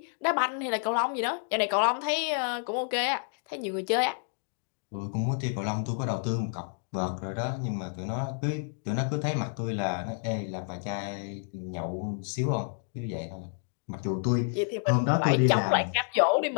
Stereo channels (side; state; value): right; silent; digital silence